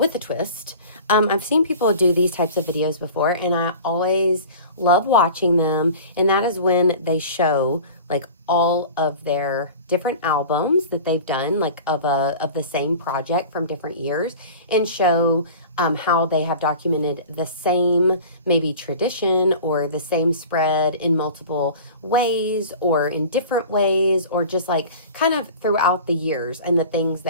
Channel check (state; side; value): inverted; both; correlation -0.39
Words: a twist. I've seen people do these types of videos before, and I always love watching them, and that is when they show like all of their different albums that they've done, like of the same project from different years, and show how they have documented the same maybe tradition or the same spread in multiple ways or in different ways, or just like kind of throughout the years, and the things